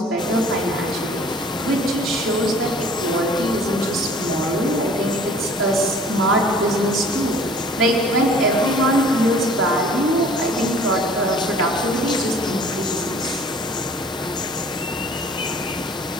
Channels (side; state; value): both; normal; correlation 0.51